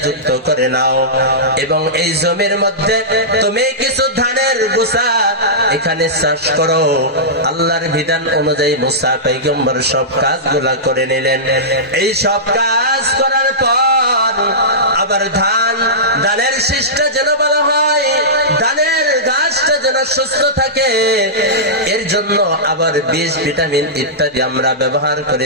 যুক্ত করে নাও, এবং এই জমির মধ্যে তুমি কিছু ধানের গুছা এখানে চাষ করো। আল্লাহর বিধান অনুযায়ী মুসা পয়গম্বর সব কাজগুলা করে নিলেন। এই সব কাজ করার পর আবার ধানের শীষটা যেন ভালো হয়, ধানের গাছটা যেন সুস্থ থাকে, এর জন্য আবার বীজ, ভিটামিন ইত্যাদি আমরা ব্যবহার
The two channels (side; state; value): both; normal; correlation -0.16